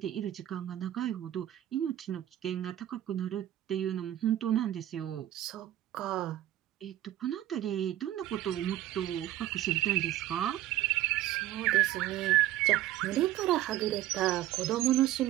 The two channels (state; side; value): quieter; left; 13.6 dB